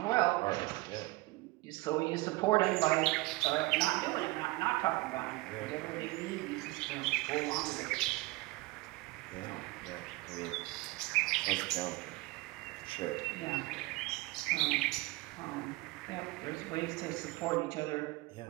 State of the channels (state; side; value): quieter; left; 22.5 dB